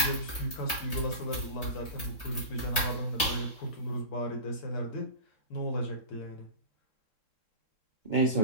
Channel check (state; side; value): late; right; 3.7 ms